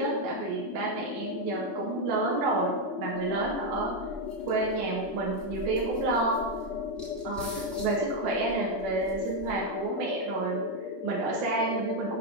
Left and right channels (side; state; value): both; normal; correlation 0.03